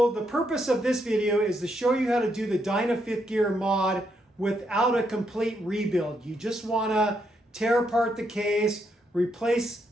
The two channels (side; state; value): both; normal; correlation 0.78